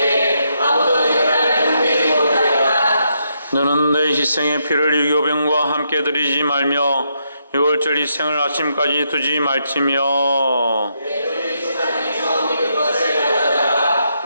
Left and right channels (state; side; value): inverted; both; correlation -0.79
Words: 너는 내 희생의 피를 유교병과 함께 드리지 말며 유월절 희생을 아침까지 두지 말지며